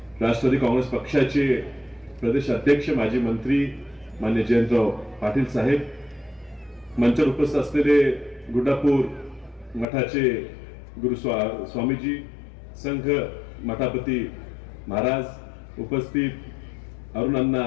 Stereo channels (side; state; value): right; drops out; at 9.9 s